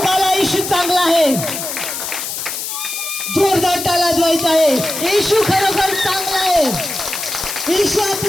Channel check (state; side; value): noise; left; hiss, 5 dB below the sound